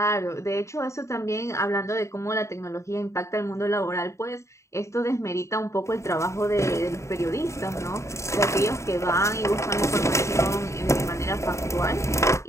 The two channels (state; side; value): late; right; 0.14 ms